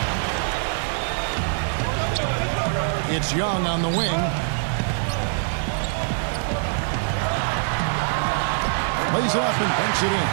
It's Young on the wing. Lays it up and banks it in.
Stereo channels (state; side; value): silent; left; 63 dB below the other